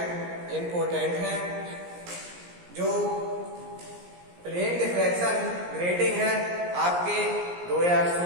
इम्पोर्टेंट हैं। जो प्लेन डिफ्रैक्शन ग्रेटिंग है आपके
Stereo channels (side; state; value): left; late; 17 ms